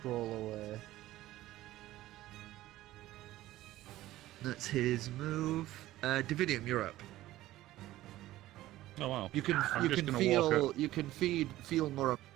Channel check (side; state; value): left; quieter; 15.6 dB